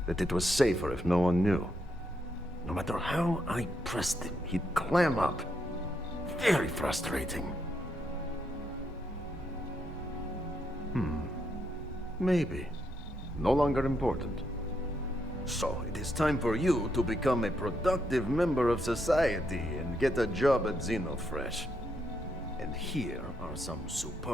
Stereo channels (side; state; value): both; normal; correlation 0.78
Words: that it was safer if no one knew. No matter how I pressed him, he'd clam up. Very frustrating. Maybe. No longer important. So, it is time for you to become a productive member of society and get a job at Xenofresh. And here are some